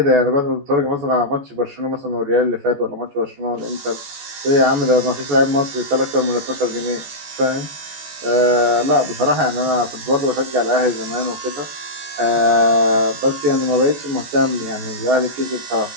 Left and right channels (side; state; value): left; late; 14 ms